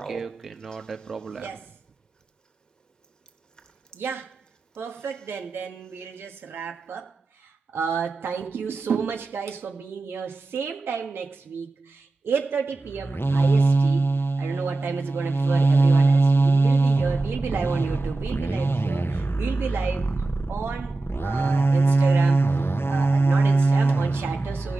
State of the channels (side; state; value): left; quieter; 3.2 dB